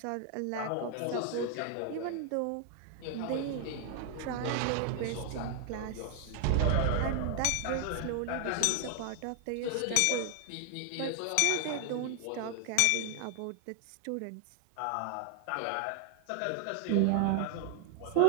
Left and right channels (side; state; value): both; different; correlation 0.00